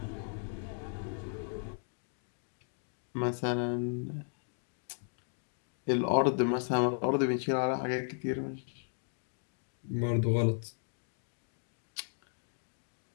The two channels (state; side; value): silent; right; 54 dB below the other